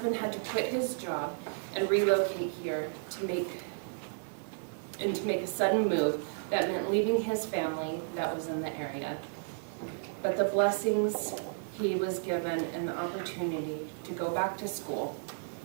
had to quit his job and relocate here to make a sudden move that meant leaving his family that was in the area. But the blessings he was given an opportunity to go back to school,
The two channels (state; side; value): silent; left; digital silence